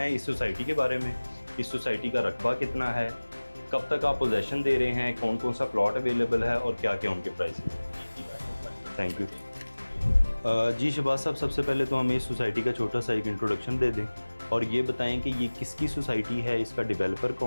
इस सोसाइटी के बारे में, इस सोसाइटी का रकबा कितना है, कब तक आप पोजेसन दे रहे हैं, कौन कौन सा प्लॉट अवेलेबल है और क्या क्या उनके प्राइस हैं। Thank you. जी शहबाज साहब, सबसे पहले तो हमें इस सोसाइटी का छोटा सा एक इंट्रोडक्शन दे दें और ये बताएं कि ये किसकी सोसाइटी है, इसका डेवलपर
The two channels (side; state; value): both; inverted; correlation -1.00